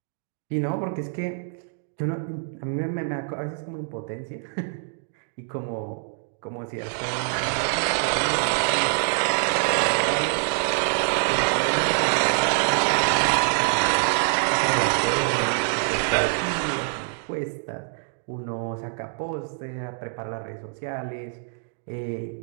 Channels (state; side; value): silent; left; digital silence